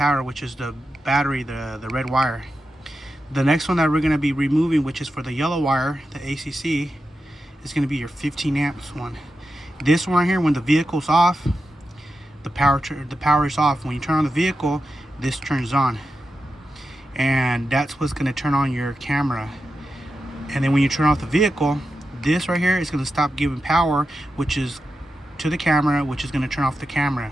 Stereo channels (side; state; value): both; normal; correlation 0.90